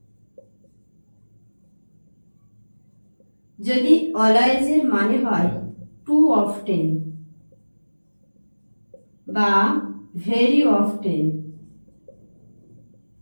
যদি অলওয়েজের মানে হয় টু অফটেন বা ভেরি অফটেন,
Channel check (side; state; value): both; inverted; correlation -1.00